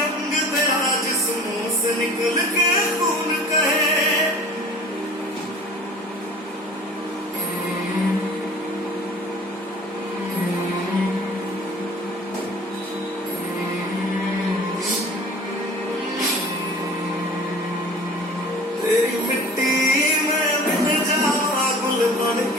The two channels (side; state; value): both; normal; correlation 0.44